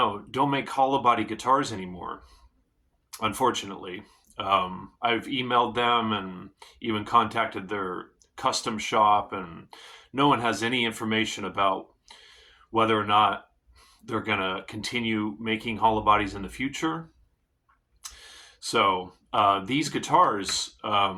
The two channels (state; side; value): identical; both; correlation 1.00